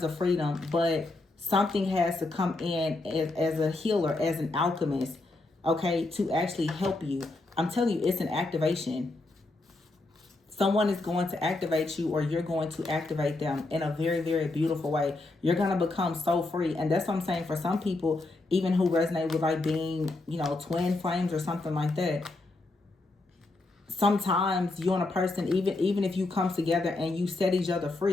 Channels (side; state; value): right; quieter; 3.1 dB